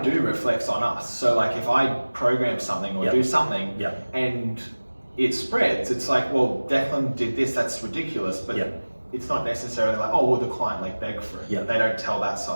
reflects on us. So like if I program something or do something and it spreads, it's like, well, Deklan did this, that's ridiculous, but it's not necessarily like, oh, well, the client like begged for it. They don't tell that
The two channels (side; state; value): both; inverted; correlation -1.00